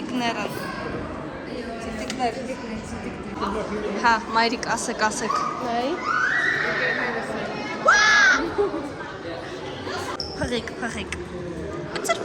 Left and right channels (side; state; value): both; identical; correlation 1.00